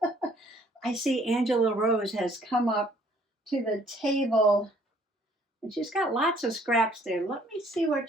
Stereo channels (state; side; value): normal; both; correlation 0.61